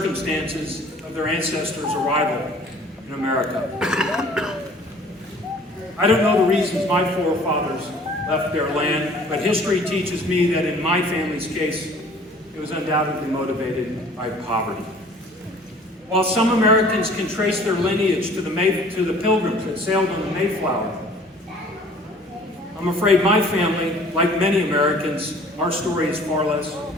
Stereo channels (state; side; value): normal; both; correlation 0.51